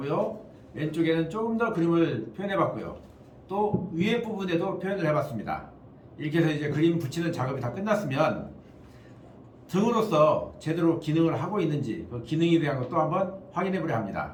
왼쪽에는 조금 더 그림을 표현해 봤고요. 또 위에 부분에도 표현을 해 봤습니다. 이렇게 해서 이제 그림 붙이는 작업이 다 끝났으면 등으로서 제대로 기능을 하고 있는지 그 기능에 대한 것도 한번 확인해 보려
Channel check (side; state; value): both; identical; correlation 1.00